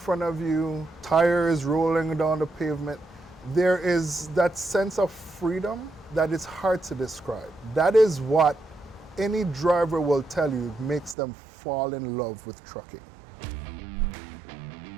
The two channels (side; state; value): left; drops out; at 11.2 s